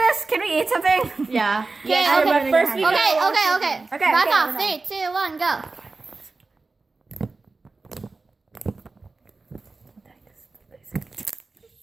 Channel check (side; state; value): left; quieter; 3.7 dB